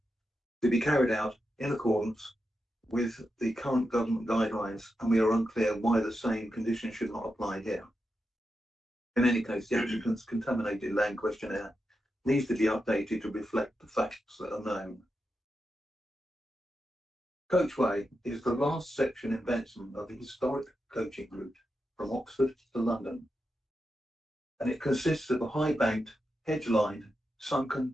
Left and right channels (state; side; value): normal; both; correlation 0.88